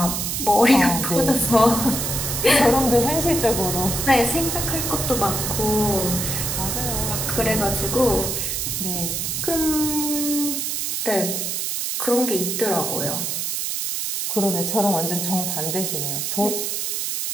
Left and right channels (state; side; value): noise; right; hiss, 1 dB below the sound